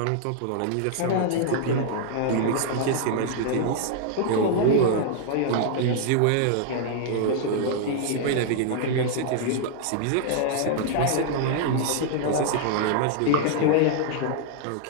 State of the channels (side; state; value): both; different; correlation -0.01